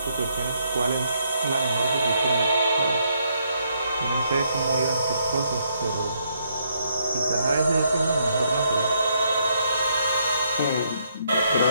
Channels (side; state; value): both; inverted; correlation -0.73